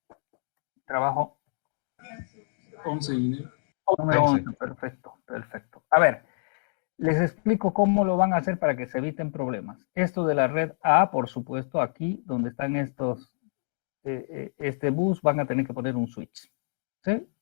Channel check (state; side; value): silent; right; digital silence